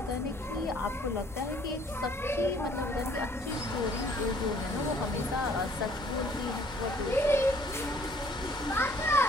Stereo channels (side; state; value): both; normal; correlation 0.59